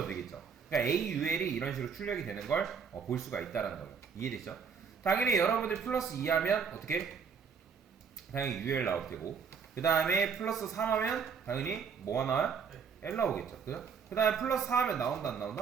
그러니까 AUL이 이런 식으로 출력이 되는 걸 볼 수가 있다라는 거예요. 이해되시죠? 당연히 여러분들 플러스 2 하면 어떻게? 당연히 UL 나올 테고, 그 다음에 플러스 3 하면 당연히 뭐가 나와요? L 나오겠죠. 그죠? 그 다음에 플러스 4 하면 나온다 안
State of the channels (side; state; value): left; quieter; 6.3 dB